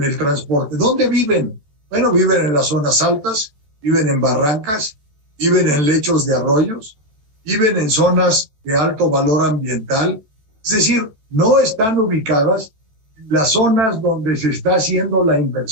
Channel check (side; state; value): left; late; 14 ms